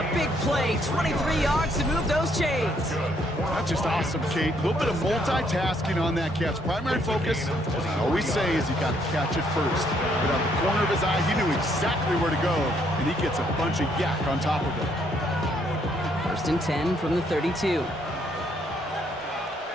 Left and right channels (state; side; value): normal; both; correlation 0.70